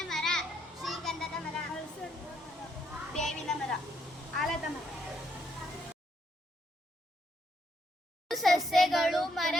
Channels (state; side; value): normal; both; correlation 0.74